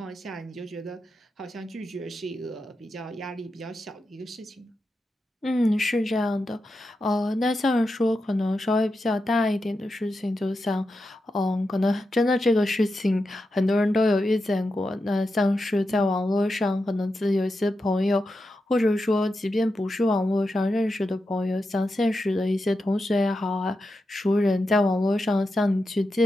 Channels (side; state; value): both; normal; correlation 0.89